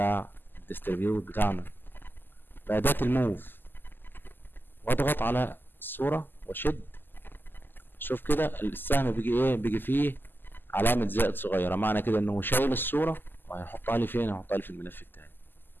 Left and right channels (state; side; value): late; right; 0.093 ms